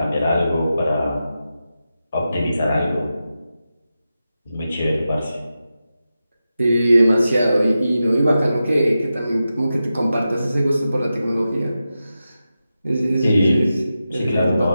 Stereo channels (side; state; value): both; inverted; correlation -0.91